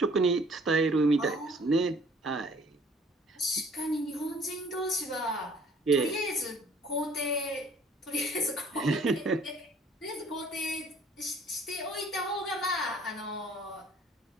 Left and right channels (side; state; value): both; normal; correlation 0.56